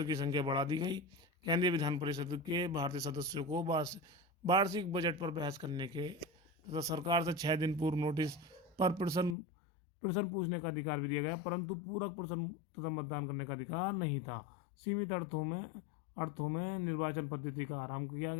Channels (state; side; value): drops out; right; at 9.3 s